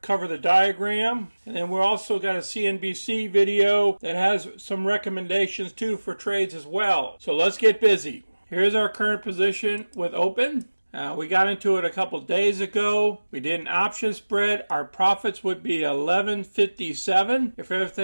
cover the diagram. And then we also got a CNBC video that has some recommendations too for trades as well. So let's get busy. Here's our current position with Open. We got into it a couple days ago. We did an option spread. Our profits would be $11.57 if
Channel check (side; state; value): both; inverted; correlation -1.00